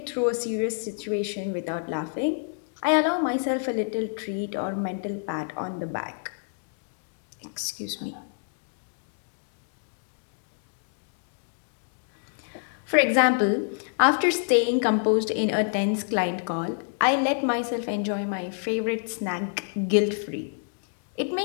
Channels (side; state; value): right; silent; digital silence